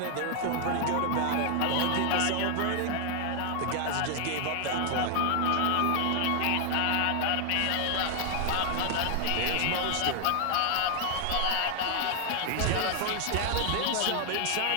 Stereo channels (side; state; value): both; different; correlation 0.00